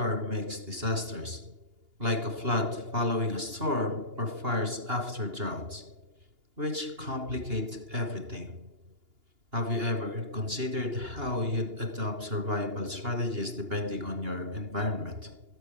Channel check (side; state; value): left; late; 2.8 ms